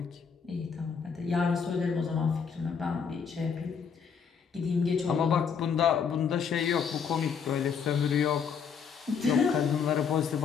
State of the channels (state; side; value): quieter; right; 6.5 dB